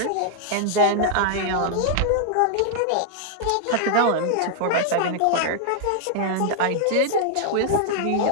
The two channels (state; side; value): different; both; correlation 0.00